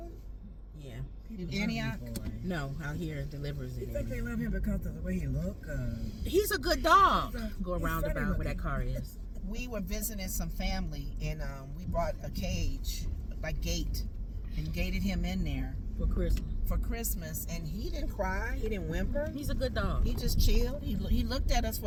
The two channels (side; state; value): both; identical; correlation 1.00